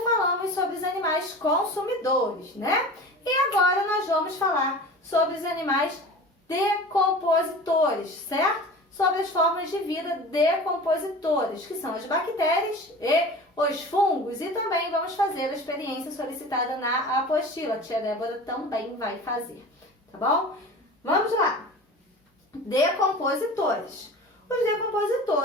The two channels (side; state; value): both; normal; correlation 0.37